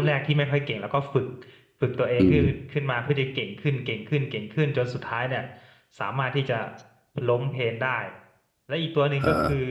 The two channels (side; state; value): both; identical; correlation 1.00